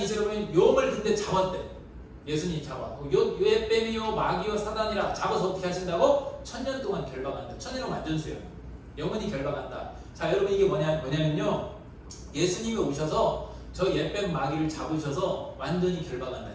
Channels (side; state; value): both; identical; correlation 1.00